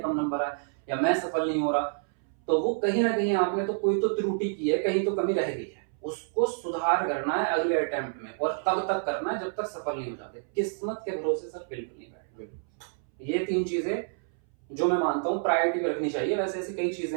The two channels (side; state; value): left; silent; 59 dB below the other